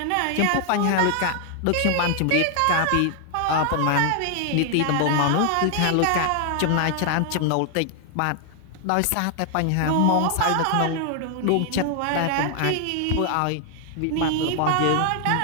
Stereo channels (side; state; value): both; different; correlation 0.00